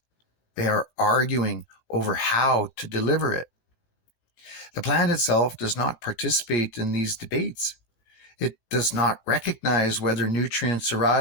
They are arguing over how to deliver it. The plant itself does not participate in these debates. It does not recognize whether nutrients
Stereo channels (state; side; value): late; right; 18 ms